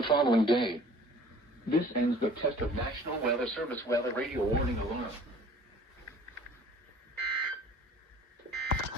following day. This ends the test of National Weather Service weather radio warning alarm.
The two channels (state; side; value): normal; both; correlation 0.49